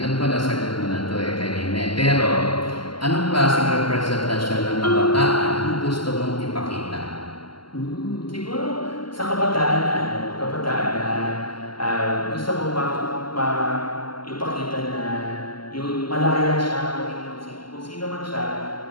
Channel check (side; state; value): right; late; 0.72 ms